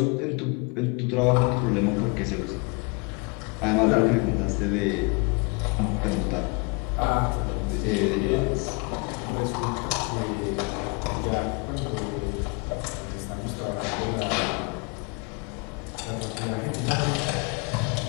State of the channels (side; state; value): right; quieter; 31.4 dB